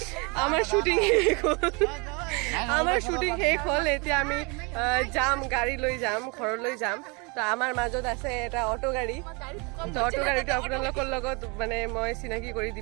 আমাৰ শুটিং শেষ হ'ল। আমাৰ শুটিং শেষ হ'ল। এতিয়া আমি যাম, গাড়ী লৈ যাম, ঘৰলৈ যাম। তো আমাৰ মাজত আছে এটা অটো গাড়ী। তো অটো গাড়ীটো আপোনালোকৰ লগত মানে মই চিনাকি কৰি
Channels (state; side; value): quieter; left; 30.1 dB